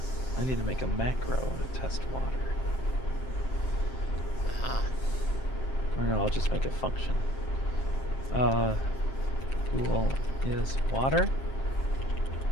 I need to make a macro to test water. Ah. Or no, I'll just make a function. Pool is water.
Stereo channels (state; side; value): late; right; 7.6 ms